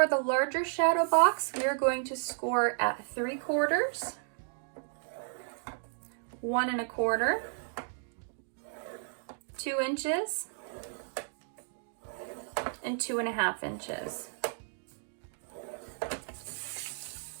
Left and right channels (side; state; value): left; silent; digital silence